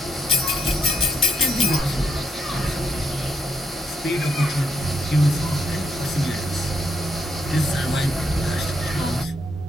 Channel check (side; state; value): both; normal; correlation 0.77